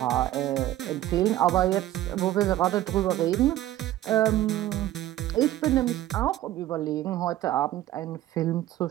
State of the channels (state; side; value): quieter; left; 14.1 dB